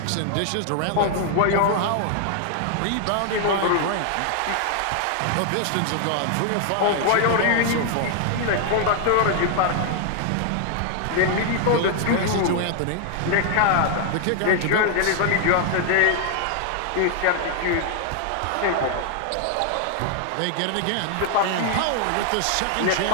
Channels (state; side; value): different; both; correlation 0.00